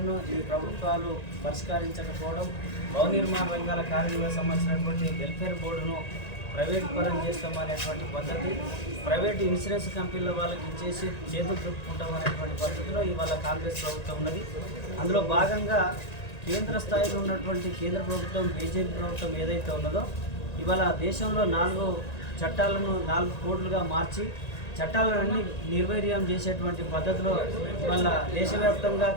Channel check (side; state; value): right; late; 1.9 ms